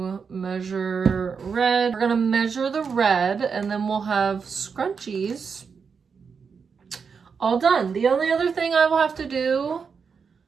measure red. We're gonna measure the red and then we'll have scrunchies all done. The only other thing I will have to do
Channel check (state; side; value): quieter; left; 5.8 dB